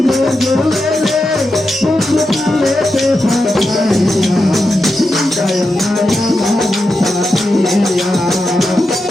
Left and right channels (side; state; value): both; normal; correlation 0.88